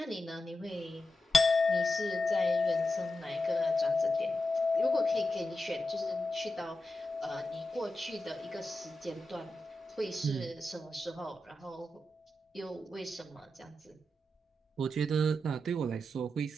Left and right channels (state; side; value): normal; both; correlation 0.89